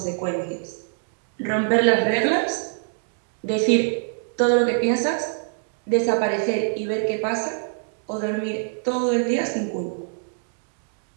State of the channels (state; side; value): silent; left; digital silence